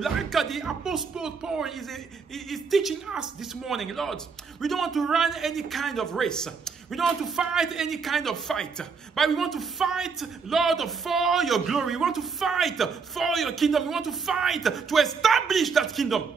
Like the Apostle Paul is teaching us this morning, Lord. We don't want to run any kind of race. We don't want to fight any kind of fight. But we want to fight, Lord, for your glory. We want to fight for your kingdom. We want to fight to establish that kingdom.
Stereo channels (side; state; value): left; quieter; 5.3 dB